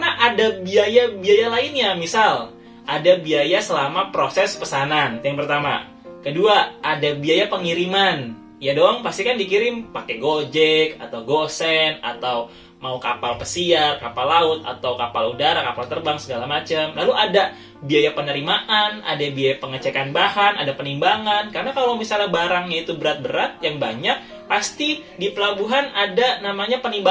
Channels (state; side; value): identical; both; correlation 1.00